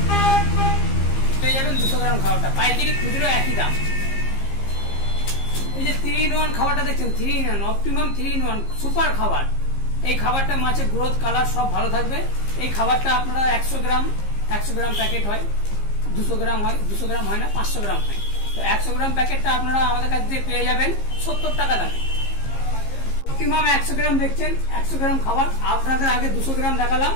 পেয়ে যাবেন 200 গ্রাম খাবারটা, পাইকারি খুচরো একই দাম। এই যে 3-in-1 খাবারটা দেখছেন, 3-in-1 অপটিমাম 3-in-1 সুপার খাবার। এই খাবারটা মাছের গ্রোথ কালার সব ভালো থাকবে। এই খাবারটা আপনারা 100 গ্রাম প্যাকেট হয়, 200 গ্রাম হয়, 200 গ্রাম হয় না, 500 গ্রাম হয়। তো 100 গ্রাম প্যাকেটটা আপনারা আমাদের কাছ থেকে পেয়ে যাবেন 70 টাকা দামে। অপটিমাম 100 গ্রাম দেখছেন, 100 গ্রাম খাবার আপনাদের আগে 200 গ্রাম দেখালাম,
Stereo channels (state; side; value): late; right; 15 ms